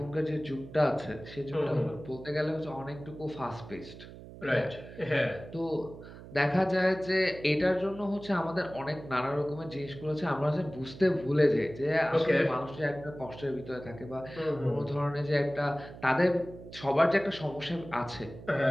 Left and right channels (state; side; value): noise; right; hum, 15 dB below the sound